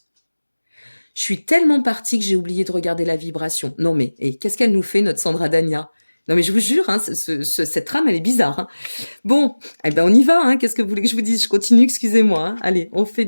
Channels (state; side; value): inverted; both; correlation -1.00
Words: Je suis tellement partie que j'ai oublié de regarder la vibration. Non mais, qu'est-ce qu'elle nous fait, notre Sandra Dania? Non mais je vous jure, hein, cette trame, elle est bizarre, hein. Bon, eh ben on y va, hein. Qu'est-ce que vous voulez que je vous dise? Je continue, excusez-moi, hein. Allez, on fait